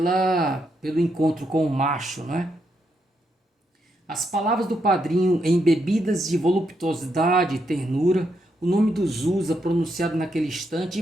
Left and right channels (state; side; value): normal; both; correlation 0.80